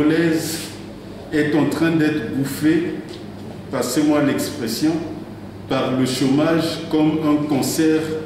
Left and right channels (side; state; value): both; identical; correlation 1.00